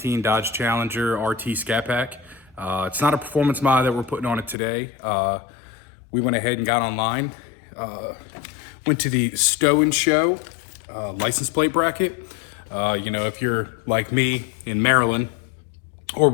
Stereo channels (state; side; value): drops out; right; at 4.5 s